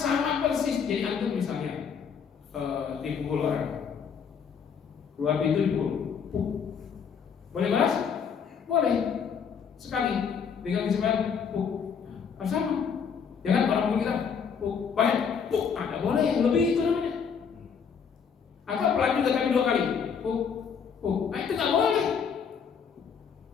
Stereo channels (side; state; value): right; quieter; 6.7 dB